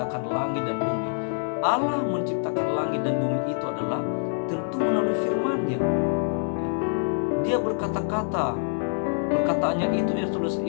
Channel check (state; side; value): silent; right; digital silence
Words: langit dan bumi. Allah menciptakan langit dan bumi itu adalah tentu melalui firman-Nya. Dia berkata-kata, perkataannya